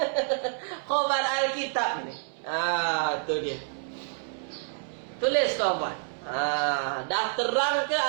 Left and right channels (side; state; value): left; silent; 59 dB below the other